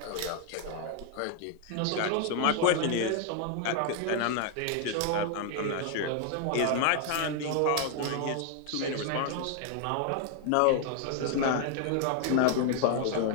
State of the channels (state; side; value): different; both; correlation 0.00